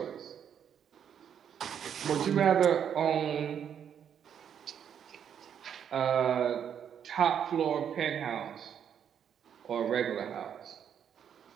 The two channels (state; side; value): quieter; left; 8.5 dB